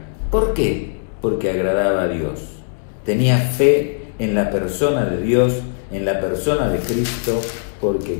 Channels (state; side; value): silent; right; 65 dB below the other